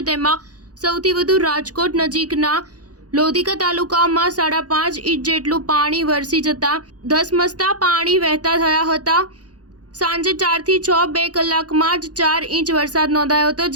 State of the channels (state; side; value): late; left; 0.68 ms